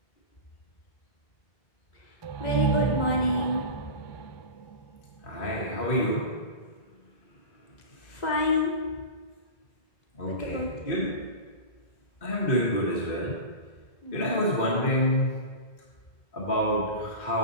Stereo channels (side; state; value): right; late; 2.0 ms